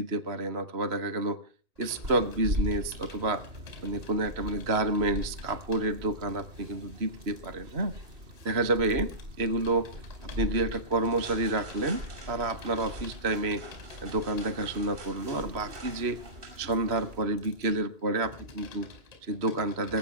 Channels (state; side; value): late; left; 3.0 ms